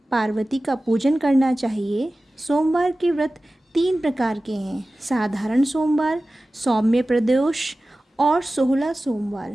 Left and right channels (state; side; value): normal; both; correlation 0.96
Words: पार्वती का पूजन करना चाहिए। सोमवार के व्रत 3 प्रकार के हैं: साधारण सोमवार, सौम्य प्रदोष और 16